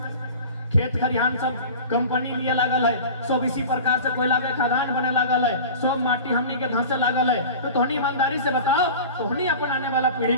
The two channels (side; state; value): both; inverted; correlation -0.36